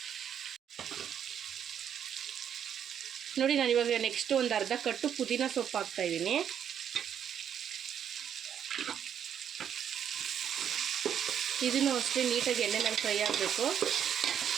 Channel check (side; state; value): left; quieter; 8.9 dB